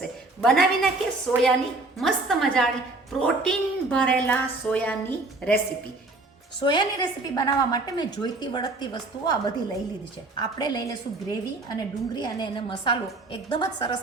બનાવી નાખીએ સોયાની મસ્ત મજાની પ્રોટીન ભરેલા સોયાની રેસીપી. સોયાની રેસીપી બનાવવા માટે મેં જોઈતી વળગતી વસ્તુઓ આ બધી લઈ લીધી છે. આપણે લઈ લઈશું ગ્રેવી અને ડુંગળી અને એને મસાલો એકદમ જ સરસ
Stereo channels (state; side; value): quieter; left; 3.1 dB